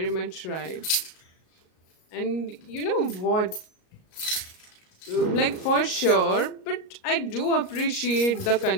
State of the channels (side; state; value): right; late; 38 ms